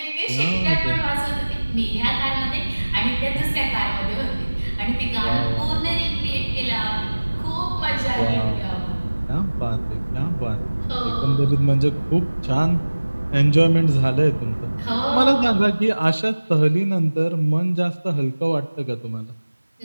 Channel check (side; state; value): both; inverted; correlation -1.00